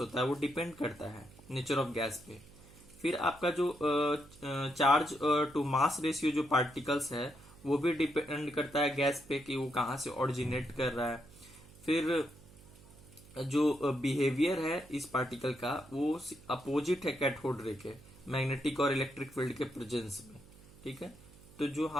है वो डिपेंड करता है नेचर ऑफ गैस पे। फिर आपका जो चार्ज टू मास रेशियो जो पार्टिकल्स है वो भी डिपेंड करता है गैस पे कि वो कहाँ से ओरिजिनेट कर रहा है। फिर जो बिहेवियर है इस पार्टिकल का वो अपोजिट है कैथोड रे के, मैग्नेटिक और इलेक्ट्रिक फील्ड के प्रेजेंस में। ठीक है, तो जो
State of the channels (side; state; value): right; noise; hum, 22 dB below the sound